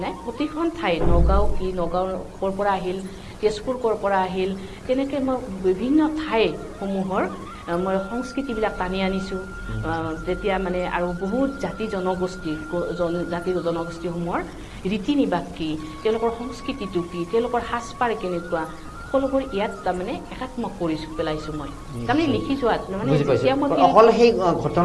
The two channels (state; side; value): identical; both; correlation 1.00